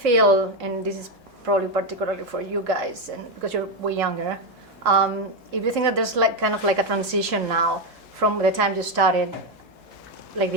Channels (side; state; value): both; normal; correlation 0.08